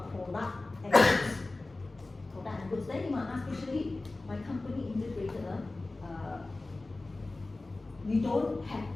product and goods. Product and goods. Then you might ask, especially my company integrator, we don't have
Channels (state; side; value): quieter; right; 3.1 dB